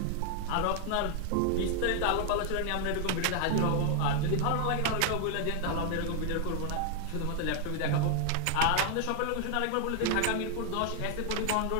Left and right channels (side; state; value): both; different; correlation 0.00